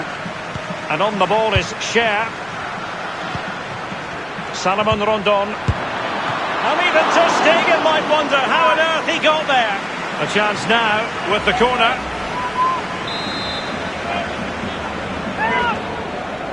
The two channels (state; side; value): noise; right; rumble, 27 dB below the sound